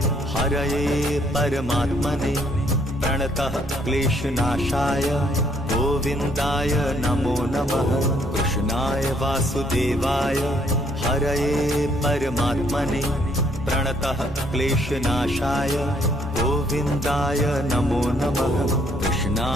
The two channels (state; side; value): normal; both; correlation 0.67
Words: हरये परमात्मने प्रणतः क्लेशनाशाय गोविन्दाय नमो नमः। कृष्णाय वासुदेवाय हरये परमात्मने प्रणतः क्लेशनाशाय गोविन्दाय नमो नमः।